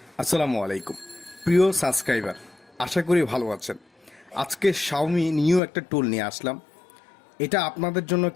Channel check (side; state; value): right; drops out; at 5.6 s